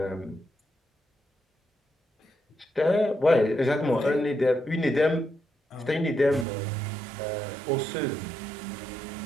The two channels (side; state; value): left; drops out; at 6.5 s